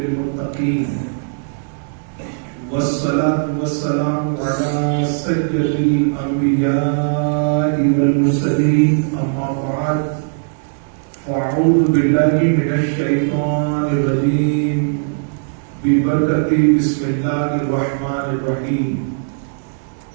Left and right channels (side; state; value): left; silent; digital silence